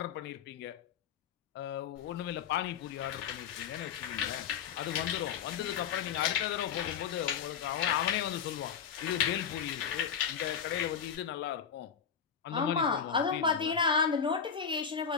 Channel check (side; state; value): right; quieter; 7.4 dB